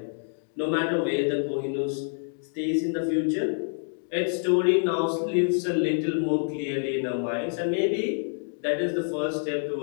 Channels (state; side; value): silent; right; digital silence